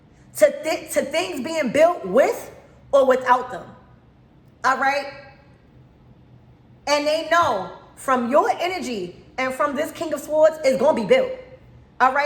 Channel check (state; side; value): identical; both; correlation 1.00